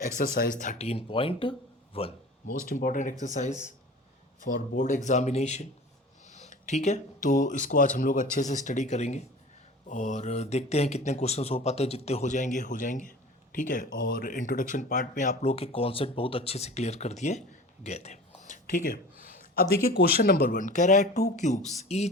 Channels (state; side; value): normal; both; correlation 0.39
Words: 13.1, most important exercise for board examination. ठीक है, तो इसको आज हम लोग अच्छे से स्टडी करेंगे और देखते हैं कितने क्वेश्चंस हो पाते हैं. जितने हो जाएंगे. ठीक है, और इंट्रोडक्शन पार्ट में आप लोग के कॉन्सेप्ट बहुत अच्छे से क्लियर कर दिए गए थे. ठीक है, अब देखिए क्वेश्चन नंबर 1 कह रहा है to cubes